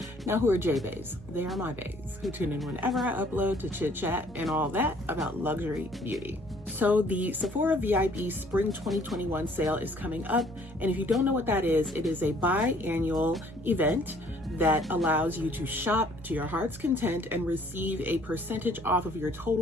Now, who are Jeahbaes? They are my baes who tune in whenever I upload to chit chat and all that about luxury beauty. So the Sephora VIB Spring 2021 sale is coming up, and if you don't know what that is, it is a biannual event that allows you to shop to your heart's content and receive a percentage off of your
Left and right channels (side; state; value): both; normal; correlation 0.59